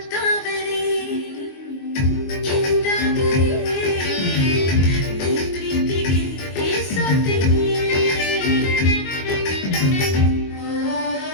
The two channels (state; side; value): late; right; 22 ms